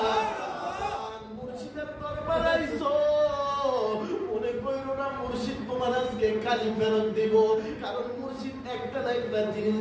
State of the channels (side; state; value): both; identical; correlation 1.00